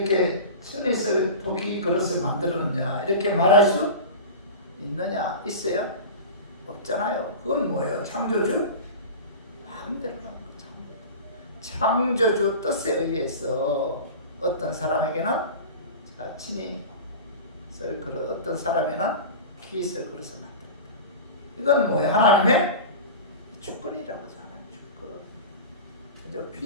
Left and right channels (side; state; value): both; inverted; correlation -0.31